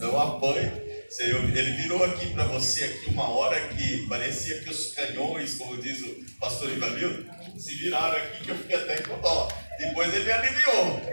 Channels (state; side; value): inverted; both; correlation -1.00